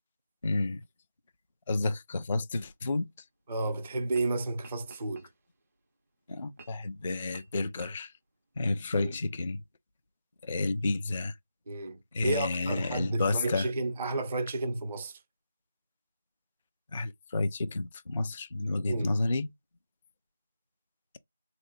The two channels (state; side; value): inverted; both; correlation -0.86